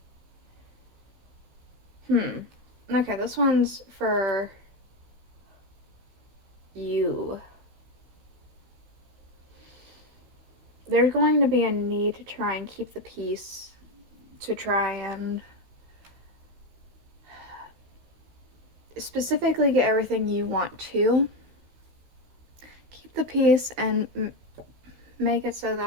Okay, this one's for you. There's going to be a need to try and keep the peace, to try and specifically get everything you want to. Keep the peace and make it so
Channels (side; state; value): left; late; 15 ms